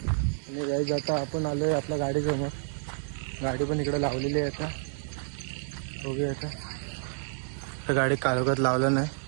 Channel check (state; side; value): silent; left; digital silence